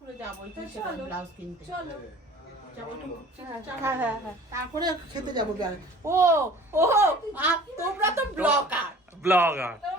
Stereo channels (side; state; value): both; normal; correlation 0.47